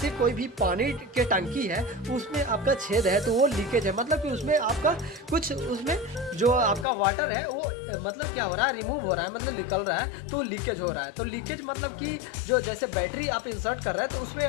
कोई भी पानी के टंकी है उसमें आपका छेद है तो वो लीकेज है, मतलब कि उसमें आपका कुछ उसमें जो आपका वाटर है वो मतलब क्या हो रहा है, रिमूव हो रहा है, मतलब निकल रहा है तो लीकेज हो रहा है। तो लीकेज मतलब कि जो जैसे बैटरी आप इंसर्ट कर रहे हैं तो उसमें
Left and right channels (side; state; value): right; drops out; at 6.9 s